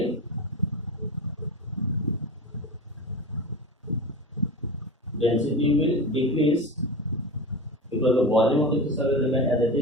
decrease because the volume of the crystal will remain as it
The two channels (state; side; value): normal; both; correlation 0.26